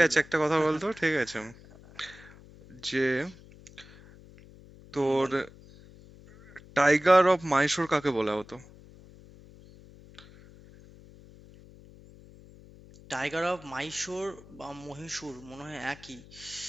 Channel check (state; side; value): noise; left; hum, 21 dB below the sound